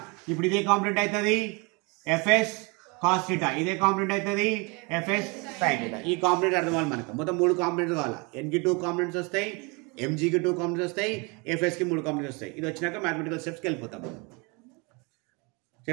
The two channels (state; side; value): quieter; left; 29.5 dB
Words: ఇప్పుడు ఇదే కాంపోనెంట్ అవుతుంది ఎఫ్ఎస్ కాస్ థీటా, ఇదే కాంపోనెంట్ అవుతుంది ఎఫ్ఎస్ సైన్ థీటా. ఈ కాంపోనెంట్ అర్థం అవ్వాలి మనకు. మొత్తం 3 కాంపోనెంట్స్ కావాలా. ఎన్కి 2 కాంపోనెంట్స్ వస్తాయి, ఎంజీకి 2 కాంపోనెంట్స్ వస్తాయి, ఎఫ్ఎస్కి 3 కాంపోనెంట్స్ వస్తాయి. ఇది వచ్చినాక మ్యాథమెటికల్ స్టెప్స్కి వెళ్ళిపోతాం.